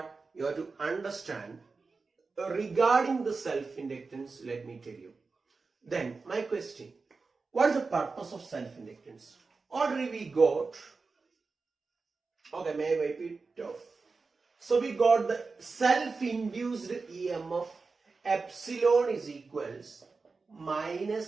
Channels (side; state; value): left; quieter; 4.3 dB